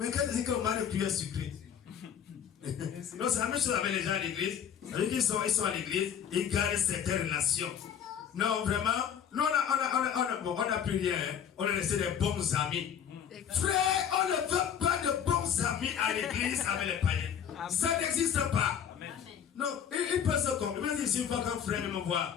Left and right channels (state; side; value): quieter; right; 8.5 dB